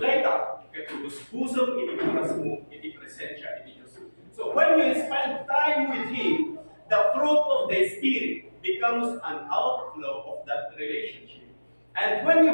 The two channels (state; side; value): inverted; both; correlation -1.00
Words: katulus-pusong iti oras mo, iti presensya iti Diyos. So, when you spend time with Him, the fruit of the Spirit becomes an outflow of that relationship. And when